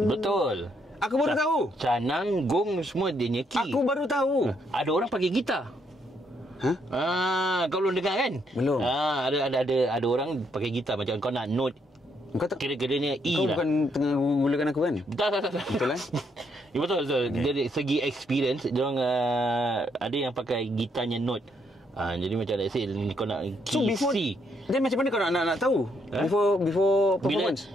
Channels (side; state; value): both; normal; correlation 0.74